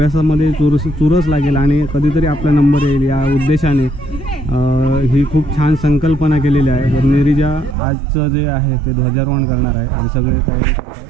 चुरस लागेल आणि कधीतरी आपला नंबर येईल या उद्देशाने ही खूप छान संकल्पना केलेली आहे. तर नीरिजा आजचं जे आहे ते ध्वजारोहण करणार आहे आणि सगळे तयारी करत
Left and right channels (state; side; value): drops out; left; at 7.8 s